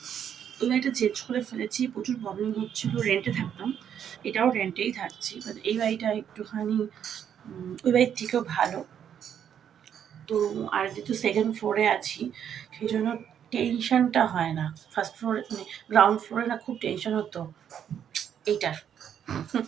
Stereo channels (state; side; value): quieter; left; 8.9 dB